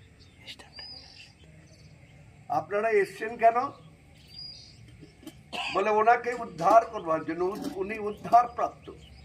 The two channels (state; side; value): identical; both; correlation 1.00